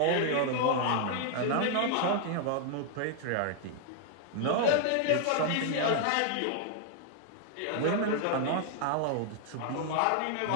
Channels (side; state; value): both; different; correlation 0.00